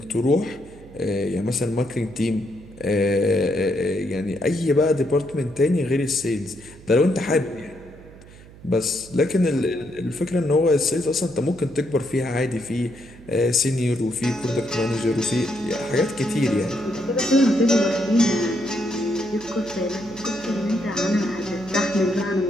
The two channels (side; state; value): right; noise; hum, 20 dB below the sound